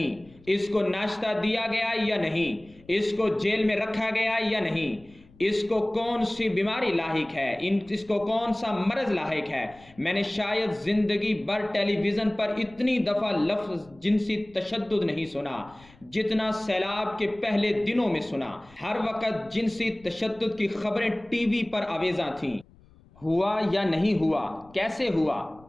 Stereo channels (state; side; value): noise; left; rumble, 27 dB below the sound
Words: اس کو ناشتہ دیا گیا یا نہیں، اس کو جیل میں رکھا گیا یا نہیں، اس کو کون سی بیماری لاحق ہے، اس کو کون سا مرض لاحق ہے۔ میں نے شاید زندگی بھر ٹیلی ویژن پر اتنی دفعہ لفظ جنسی تشدد نہیں سنا جتنا سیلاب کے پہلے دنوں میں سنا۔ ہر وقت جنسی تشدد کی خبریں ٹی وی پر آویزاں تھیں۔ ہوا یا نہیں ہوا، کیسے ہوا،